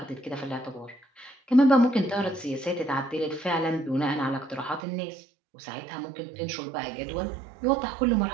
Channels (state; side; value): drops out; left; at 4.8 s